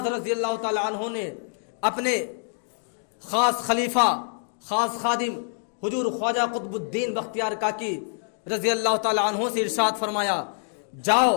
رضی اللہ تعالیٰ عنہ نے اپنے خاص خلیفہ خاص خادم حضور خواجہ قطب الدین بختیار کاکی رضی اللہ تعالیٰ عنہ سے ارشاد فرمایا، جاؤ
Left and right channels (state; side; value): silent; right; digital silence